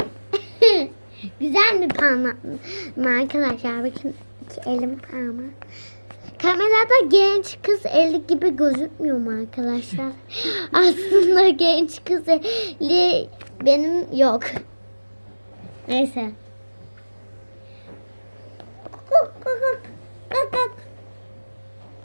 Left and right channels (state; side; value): inverted; both; correlation -1.00